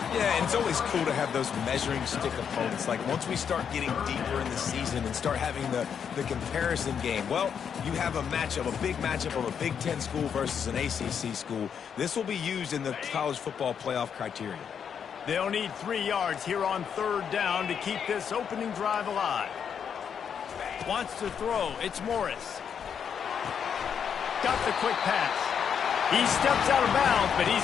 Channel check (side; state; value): right; quieter; 7.5 dB